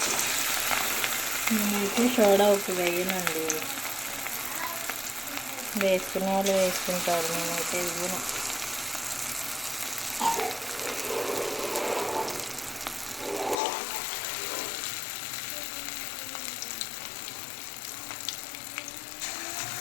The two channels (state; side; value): drops out; right; at 13.6 s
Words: నేనైతే సోడా ఉప్పు వేయనండి, వేసుకునే వాళ్ళు వేసుకుంటారు, నేనైతే ఇవ్వను.